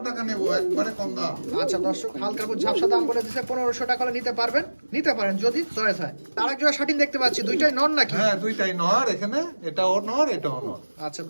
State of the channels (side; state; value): both; inverted; correlation -1.00